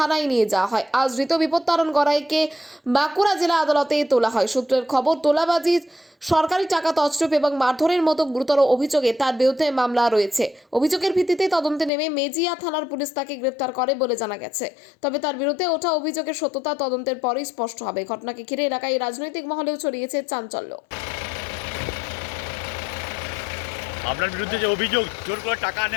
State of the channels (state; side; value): drops out; right; at 11.9 s